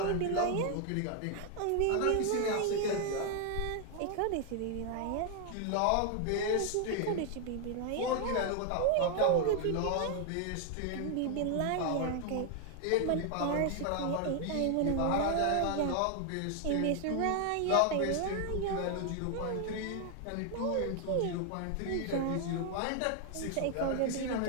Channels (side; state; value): both; different; correlation 0.00